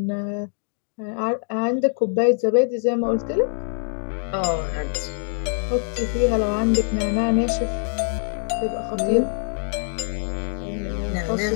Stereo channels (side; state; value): right; silent; 63 dB below the other